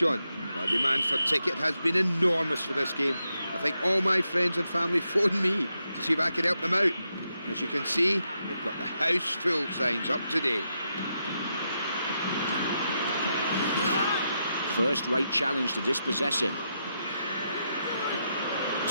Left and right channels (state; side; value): inverted; both; correlation -0.84